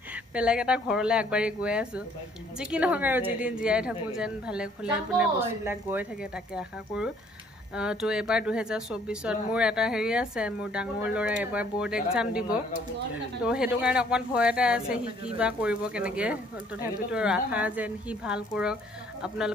বেলেগ এটা ঘৰলৈ আগবাঢ়ি গৈ আছোঁ যি কি নহওক আৰু যিদিন জীয়াই থাকোঁ যেন ভালে কুশলে মানে বস্তুবিলাক গৈ থাকে তাকে আশা কৰোঁ তো এবাৰ 2024ত মোৰ এটা হেৰি আছে মোৰ ডাঙৰ ল'ৰাই এবাৰ বৰ্ড এক্সাম দিব তো সেইটো কাৰণে অকণমান ভয় এটা আছে সি কি বা কৰিব কেনেকৈ তথাপিতো আশা যেন সি ভাল কৰক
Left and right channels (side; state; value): both; normal; correlation 0.61